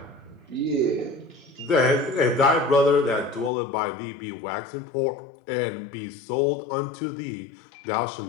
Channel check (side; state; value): right; drops out; at 3.5 s